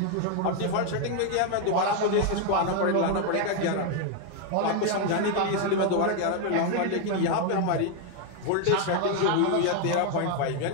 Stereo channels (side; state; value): both; different; correlation 0.01